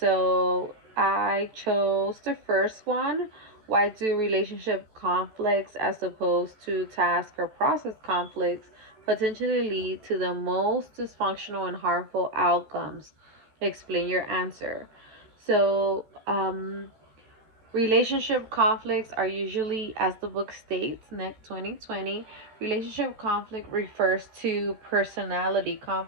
chose the first one. Why do relationship conflicts, as opposed to task or process conflicts, potentially lead to the most dysfunctional and harmful outcomes? Explain your answer. So, Relationship conflicts are usually, as the book states, NEC 2020, relationship conflict refers to personality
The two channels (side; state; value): left; late; 14 ms